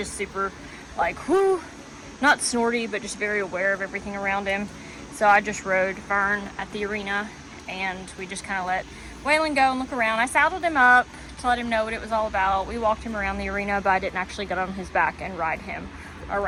super like, whoo, not snorty, but just very aware of everything around him. So I just rode Fern at the arena and we just kind of let Waylon go and look around. I saddled him up to let him know what it was all about. We walked him around the arena, but I didn't actually get on his back and ride him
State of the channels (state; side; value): identical; both; correlation 1.00